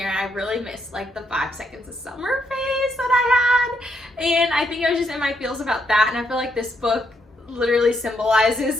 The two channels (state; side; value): normal; both; correlation 0.76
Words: I really missed like the 5 seconds of summer phase that I had. And I think I was just in my feels about that. And I feel like this book literally symbolizes